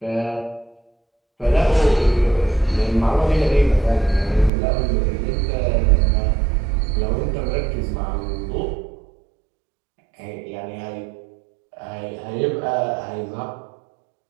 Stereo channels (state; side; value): drops out; left; at 4.5 s